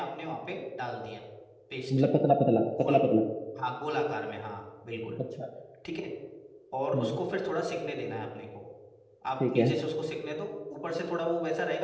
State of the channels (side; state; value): both; identical; correlation 1.00